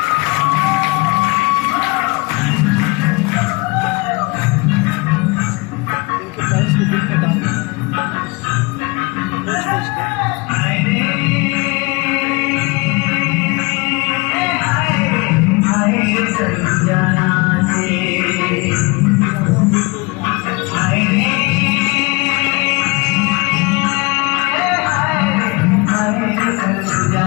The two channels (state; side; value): quieter; right; 26.6 dB